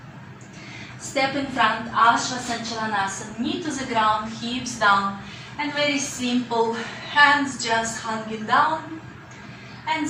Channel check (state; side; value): identical; both; correlation 1.00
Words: Step in front, Ashvasanchalanasana, knee to the ground, hips down, and very simple, hands just hanging down, and